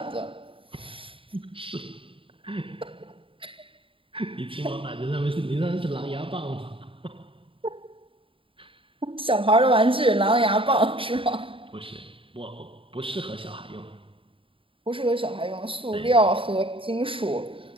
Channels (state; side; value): late; left; 0.25 ms